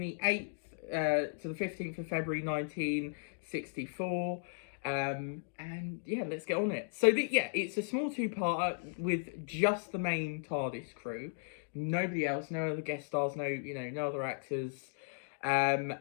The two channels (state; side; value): silent; right; digital silence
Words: the 8th to the 15th of February 1964. And yeah, let's get on it. So it's a small 2-parter with just the main TARDIS crew. Nobody else, no other guest stars, no other actors.